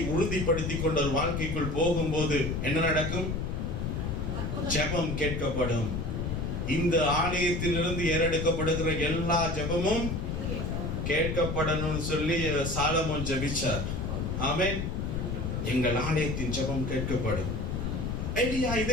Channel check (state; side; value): noise; left; rumble, 2 dB below the sound